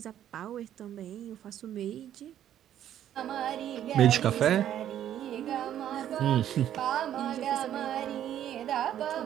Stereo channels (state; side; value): quieter; left; 11.0 dB